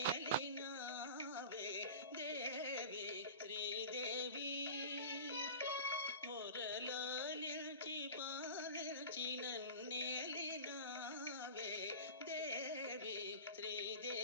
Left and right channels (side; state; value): both; inverted; correlation -0.34